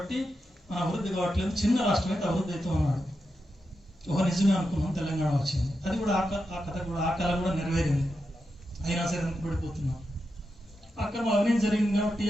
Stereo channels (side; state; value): both; normal; correlation 0.88